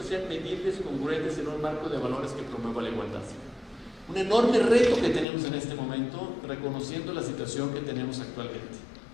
sean medibles, congruentes en un marco de valores que promueva la igualdad. Un enorme reto que tenemos en este momento, reconociendo la situación que tenemos actualmente.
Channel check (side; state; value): right; drops out; at 5.2 s